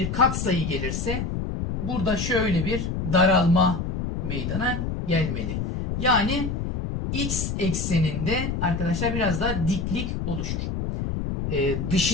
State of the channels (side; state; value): left; noise; rumble, 3 dB below the sound